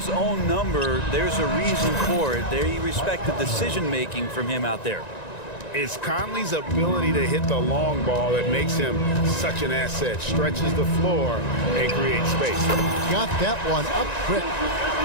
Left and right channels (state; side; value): late; right; 1.9 ms